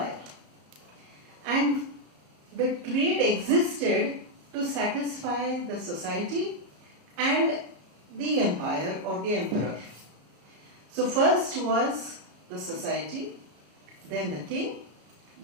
And the trade existed to satisfy the society and the empire or the emperor. So first was the society, then the king,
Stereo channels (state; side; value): late; left; 34 ms